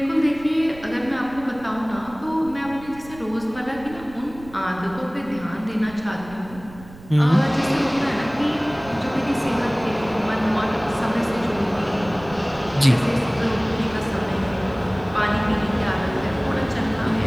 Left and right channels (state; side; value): noise; right; rumble, 18 dB below the sound